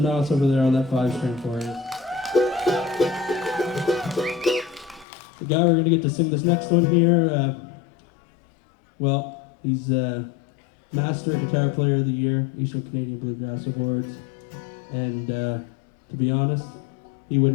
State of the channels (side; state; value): right; drops out; at 5.1 s